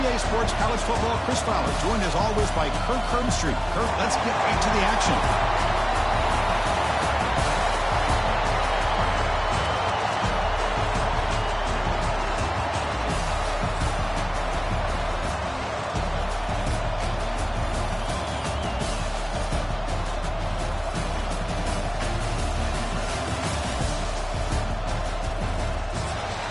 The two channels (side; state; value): both; identical; correlation 1.00